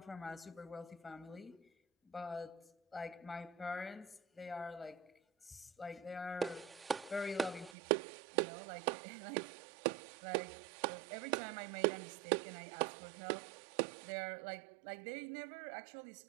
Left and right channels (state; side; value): drops out; left; at 7.8 s